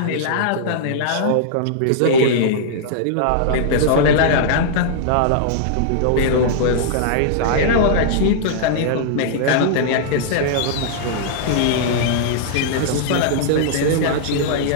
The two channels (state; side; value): different; both; correlation -0.01